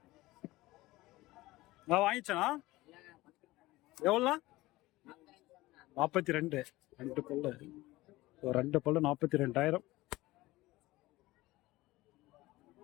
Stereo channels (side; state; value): right; quieter; 18.9 dB